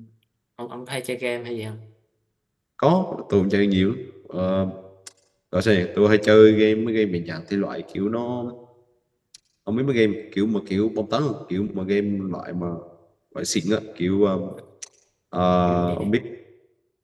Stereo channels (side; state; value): both; identical; correlation 1.00